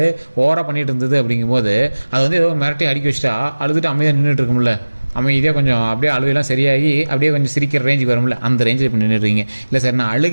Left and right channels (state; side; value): inverted; both; correlation -1.00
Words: ஓவராக பண்ணிகிட்டு இருந்தது அப்படிங்கும்போது அது வந்து ஏதோ மிரட்டி அடிக்க வச்சுட்டா அழுதுட்டு அமைதியாக நின்றுட்டு இருக்கும்ல, அமைதியாக கொஞ்சம் அப்படியே அழுகையெல்லாம் சரியாகி அப்படியே கொஞ்சம் சிரிக்கிற ரேஞ்சுக்கு வரும்ல, அந்த ரேஞ்சில் இப்போ நின்றுடுறீங்க. இல்லை சார் நான்